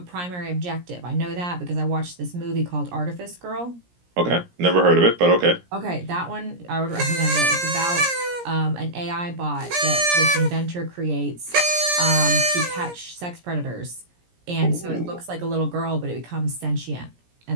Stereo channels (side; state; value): left; late; 17 ms